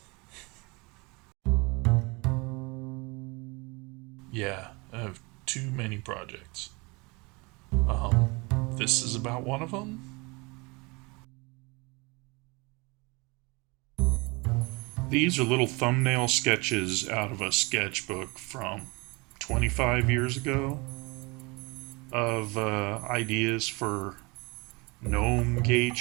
Yeah, I have too many projects. Um, this is about one of them. These are little thumbnail sketches out of a sketchbook from 25 years ago of ideas for GnOme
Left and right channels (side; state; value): left; quieter; 27.2 dB